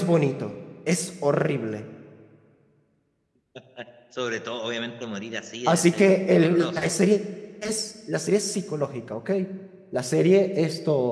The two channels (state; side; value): identical; both; correlation 1.00